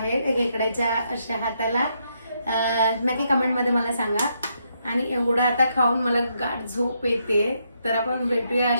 खेकड्याच्या अशा हाताला. नक्की कमेंट मध्ये मला सांगा. आणि एवढं आता खाऊन मला गाढ झोप येते. तर आपण भेटूया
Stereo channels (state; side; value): inverted; both; correlation -0.77